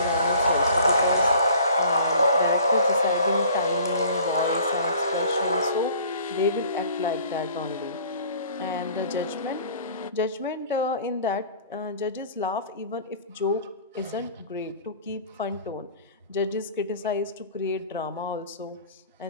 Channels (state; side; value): inverted; both; correlation -0.49